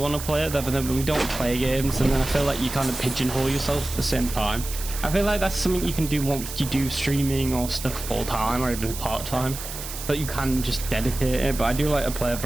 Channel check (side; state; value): right; noise; hiss, 9 dB below the sound